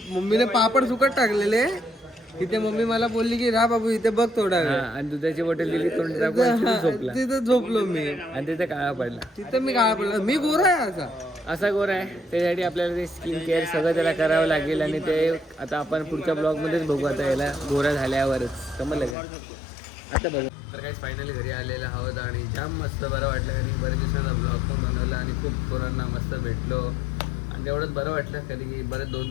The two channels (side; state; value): right; drops out; at 19.2 s